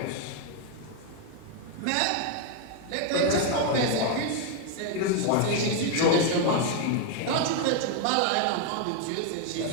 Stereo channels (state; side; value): different; both; correlation 0.01